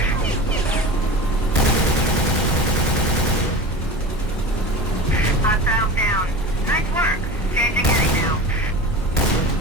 Hostiles down. Nice work. Changing heading now.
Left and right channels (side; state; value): both; normal; correlation 0.32